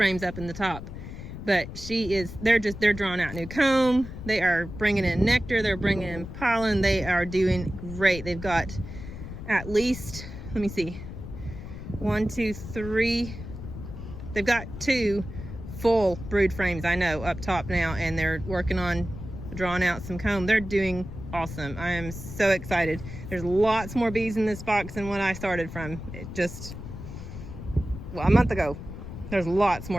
up in the top, but they're drawing out new comb. They are bringing in nectar. They're bringing in pollen. They are doing great. They've got at least, let me see, 1, 2, 3. They've got 2 full brood frames, I know, up top now, and they're working on drawing out some comb. They're doing awesome. I am so excited. There's lots more bees in this box than what I started from. A month ago. There's lots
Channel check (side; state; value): left; noise; rumble, 10 dB below the sound